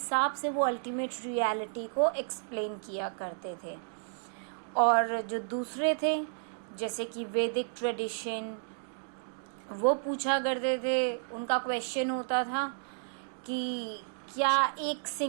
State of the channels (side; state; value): left; silent; digital silence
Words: से वो अल्टीमेट रियलिटी को एक्सप्लेन किया करते थे। और जो दूसरे थे, जैसे कि वैदिक ट्रेडिशन, वो पूछा करते थे, उनका क्वेश्चन होता था कि क्या एक